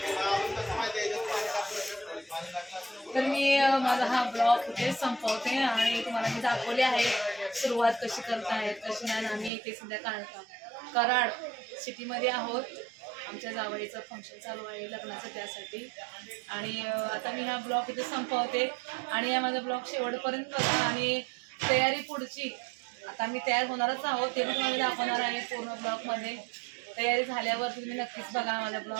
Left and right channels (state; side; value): drops out; left; at 9.5 s